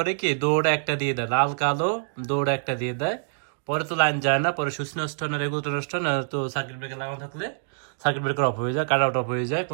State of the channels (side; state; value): left; silent; digital silence